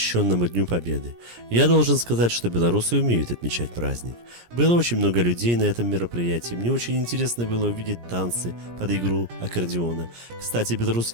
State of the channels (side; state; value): left; late; 17 ms